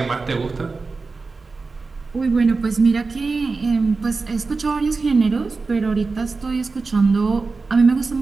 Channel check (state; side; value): quieter; left; 4.1 dB